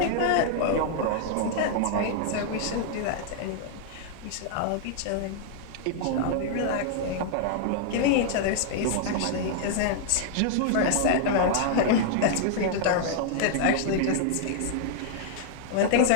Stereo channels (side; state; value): both; different; correlation 0.00